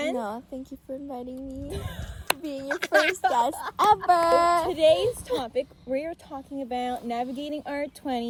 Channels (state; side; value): identical; both; correlation 1.00